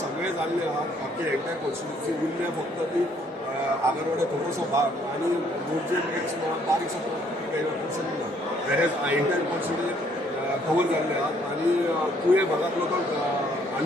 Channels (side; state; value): both; normal; correlation 0.65